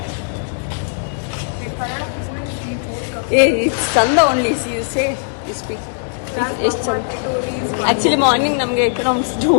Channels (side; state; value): right; silent; 67 dB below the other